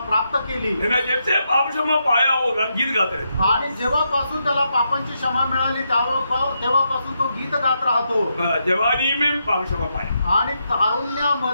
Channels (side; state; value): both; inverted; correlation -0.82